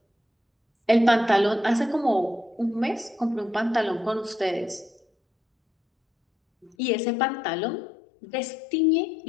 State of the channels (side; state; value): right; drops out; at 6.8 s